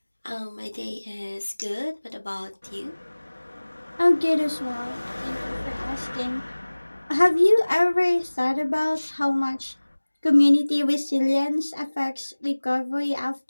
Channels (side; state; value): both; inverted; correlation -1.00